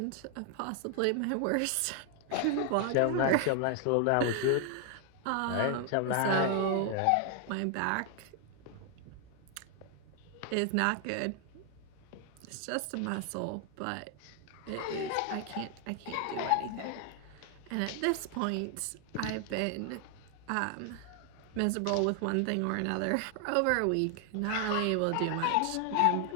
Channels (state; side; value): different; both; correlation 0.00